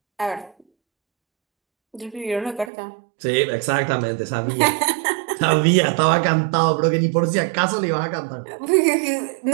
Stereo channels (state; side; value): drops out; left; at 2.7 s